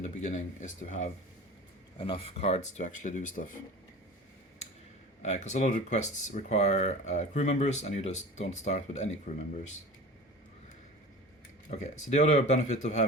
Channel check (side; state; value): both; normal; correlation 0.36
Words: the beginning, is to have enough cards to actually do stuff. Because a lot of the quests require crew members, and you just don't start with any crew members. Okay, so the other benefit of